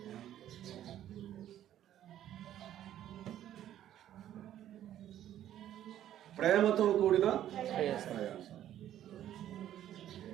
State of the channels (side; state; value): left; quieter; 11.7 dB